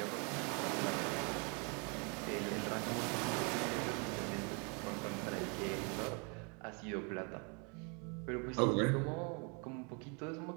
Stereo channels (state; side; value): quieter; left; 34.6 dB